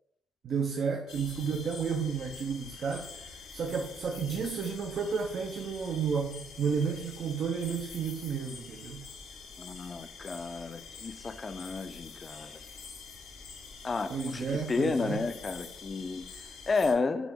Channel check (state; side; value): normal; both; correlation 0.72